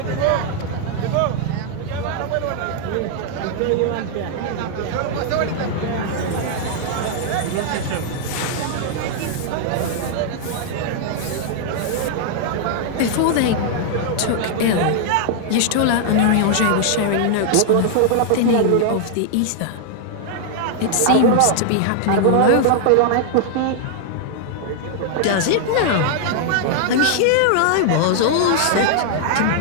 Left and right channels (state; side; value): different; both; correlation -0.01